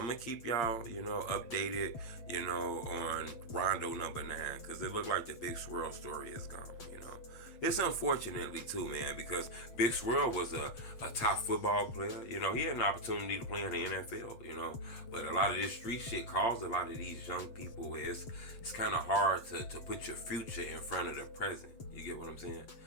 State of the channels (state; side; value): late; right; 7.7 ms